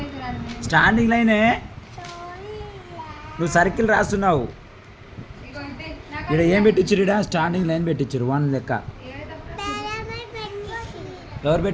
స్టాండింగ్ లైనే. నువ్వు సర్కిల్ రాస్తున్నావు. ఇక్కడ ఏం పెట్టించారు? ఇక్కడ స్టాండింగ్ లైన్ పెట్టించారు 1 లెక్క. ఎవరు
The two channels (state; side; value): identical; both; correlation 1.00